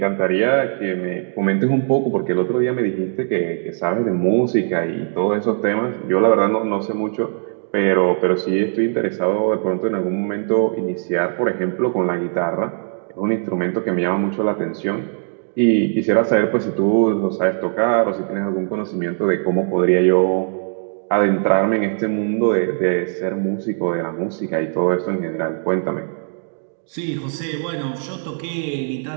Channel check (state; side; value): silent; left; 66 dB below the other